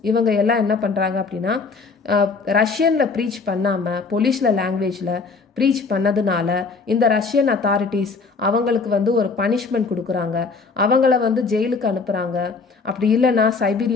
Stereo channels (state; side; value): quieter; right; 4.4 dB